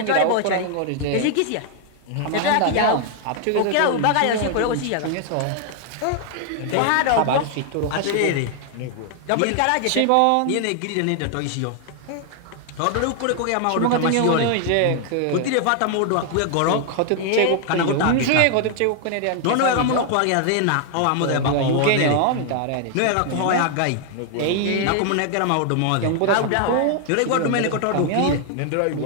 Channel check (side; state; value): both; different; correlation 0.00